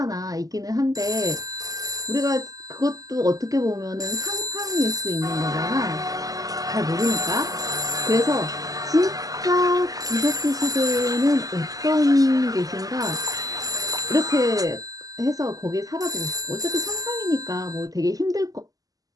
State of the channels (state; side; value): late; left; 0.17 ms